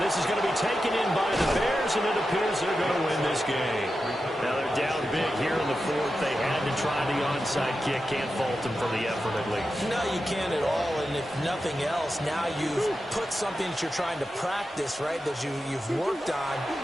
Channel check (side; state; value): both; normal; correlation 0.90